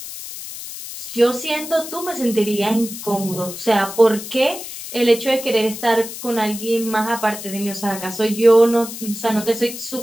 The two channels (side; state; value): left; noise; hiss, 10 dB below the sound